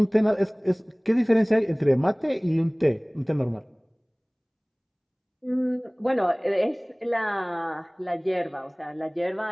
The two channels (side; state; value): both; identical; correlation 1.00